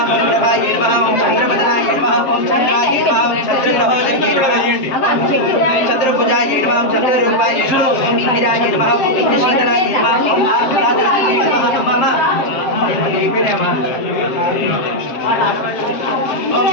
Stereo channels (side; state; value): right; late; 7.6 ms